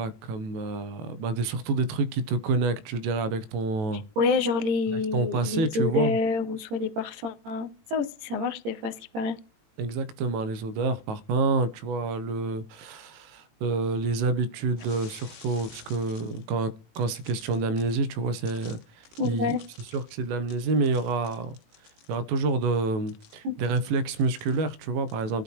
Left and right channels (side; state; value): left; late; 18 ms